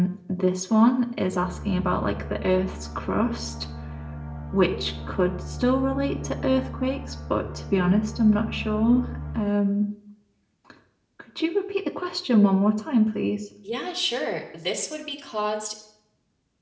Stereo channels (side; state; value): both; identical; correlation 1.00